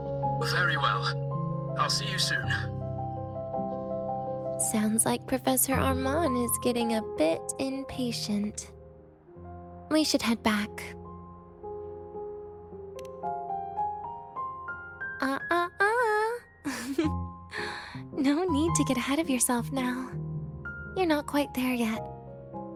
Very well. I'll see you soon. Sounds like Professor Armand is getting a bit impatient. We should head back. No need to get ahead of yourself now. You're not quite there yet.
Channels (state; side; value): identical; both; correlation 1.00